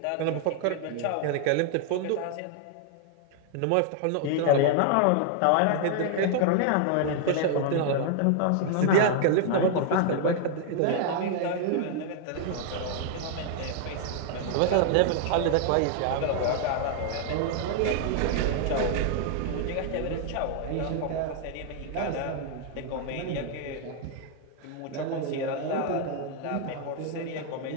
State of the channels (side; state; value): both; different; correlation 0.00